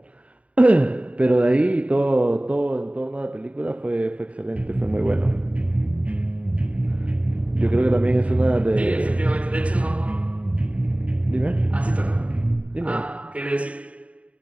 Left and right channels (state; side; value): late; left; 0.065 ms